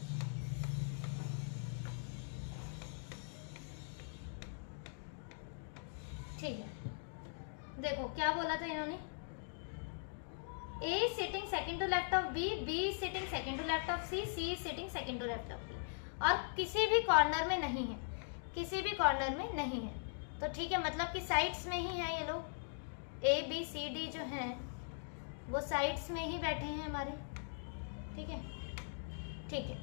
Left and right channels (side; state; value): right; silent; digital silence